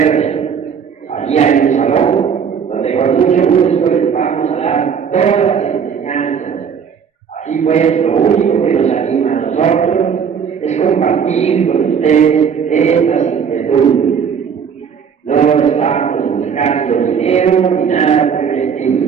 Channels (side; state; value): left; quieter; 7.1 dB